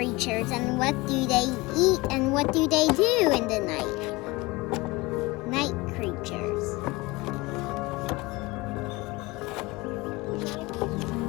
and what do they eat and what do they do in the night. Night creatures.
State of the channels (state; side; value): quieter; right; 22.8 dB